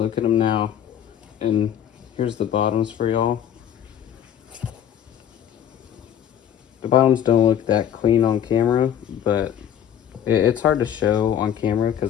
at them now. And here's the bottoms for y'all. The bottoms don't look that clean on camera, but it's hard to show on camera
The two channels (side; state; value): right; quieter; 9.6 dB